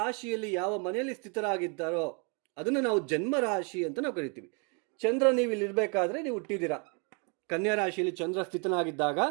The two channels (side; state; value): left; quieter; 35.9 dB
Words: ಯಾವ ಮನೆಯಲ್ಲಿ ಸ್ಥಿತರಾಗಿದ್ದಾರೋ ಅದನ್ನು ನಾವು ಜನ್ಮ ರಾಶಿ ಅಂತ ನಾವು ಕರಿತೀವಿ. ಚಂದ್ರ ನೀವು ಇಲ್ಲಿ ಇರಬೇಕಾದ್ರೆ ನೀವು ಹುಟ್ಟಿದ್ದೀರಾ, ಕನ್ಯಾ ರಾಶಿಯಲ್ಲಿ ಚಂದ್ರ ಸ್ಥಿತನಾಗಿದ್ದಾಗ